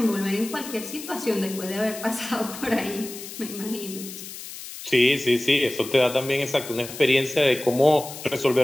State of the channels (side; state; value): left; noise; hiss, 12 dB below the sound